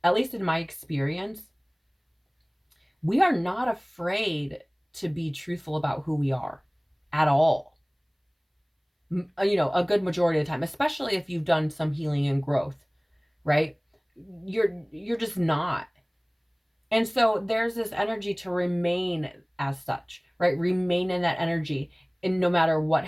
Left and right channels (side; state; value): both; identical; correlation 1.00